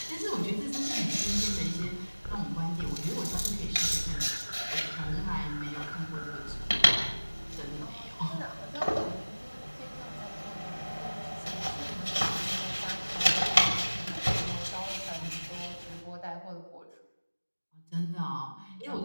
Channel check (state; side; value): inverted; both; correlation -1.00